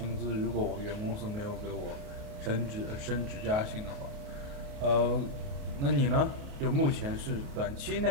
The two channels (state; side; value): late; left; 28 ms